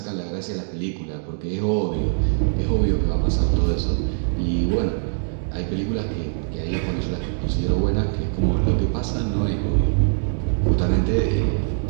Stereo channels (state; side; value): silent; left; digital silence